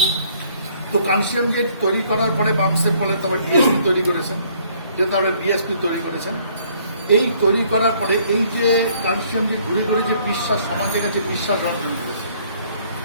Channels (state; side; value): inverted; both; correlation -0.62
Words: তো কানসিয়াম গেট তৈরি করার পরে বামসেপ বলে তারপর ডিএসপি তৈরি করেছেন, যে তারপরে বিএসপি তৈরি করেছেন। এই তৈরি করার পরে এই যে কানসিয়াম যে ঘুরে ঘুরে যে বিশ্বাস সমাজের কাছে বিশ্বাস অর্জন করেছে,